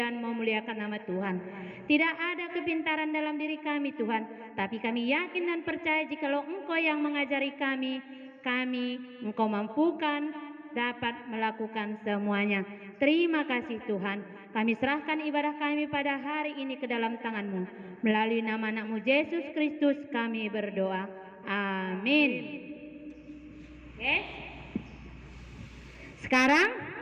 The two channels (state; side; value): identical; both; correlation 1.00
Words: memuliakan nama Tuhan. Tidak ada kepintaran dalam diri kami Tuhan, tapi kami yakin dan percaya jikalau Engkau yang mengajari kami, Engkau mampukan dapat melakukan semuanya. Terima kasih Tuhan. Kami serahkan ibadah kami pada hari ini ke dalam tangan-Mu. Melalui nama anak-Mu Yesus Kristus kami berdoa. Amin. Oke. Sekarang